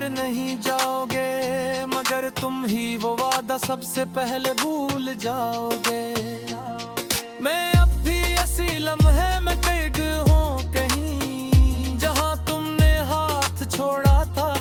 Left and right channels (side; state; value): both; identical; correlation 1.00